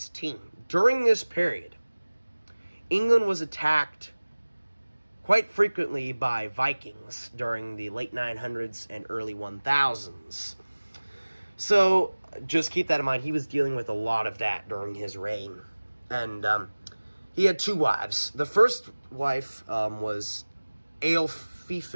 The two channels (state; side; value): inverted; both; correlation -1.00